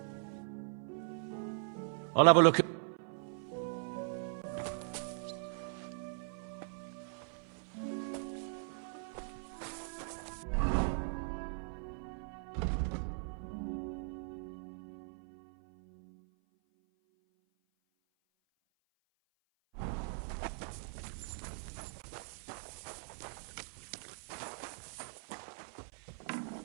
I'll have a look at...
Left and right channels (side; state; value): left; silent; 51 dB below the other